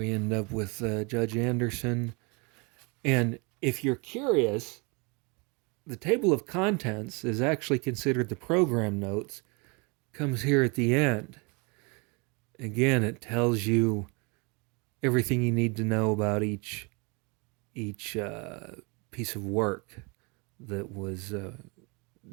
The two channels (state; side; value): quieter; left; 30.6 dB